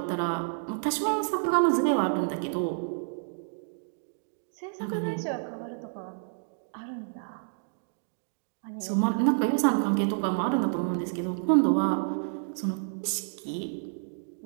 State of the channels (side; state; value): left; silent; digital silence